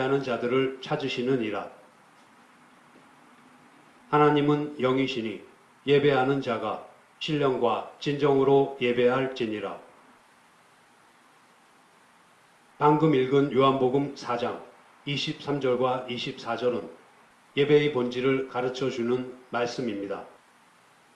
자들을 찾으시느니라. 하나님은 영이시니 예배하는 자가 신령과 진정으로 예배할지니라. 방금 읽은 요한복음 4장 23절과 24절은 예배의 본질을 가르쳐주는 말씀입니다.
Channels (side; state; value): both; identical; correlation 1.00